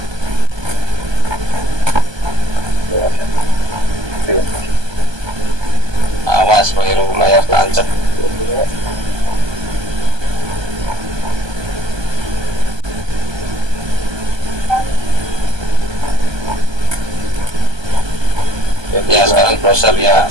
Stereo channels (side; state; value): left; late; 1.2 ms